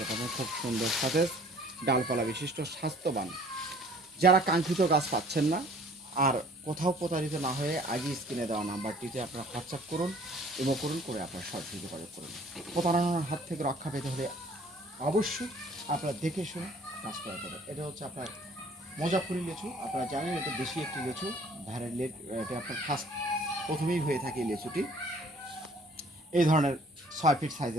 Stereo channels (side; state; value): both; normal; correlation 0.54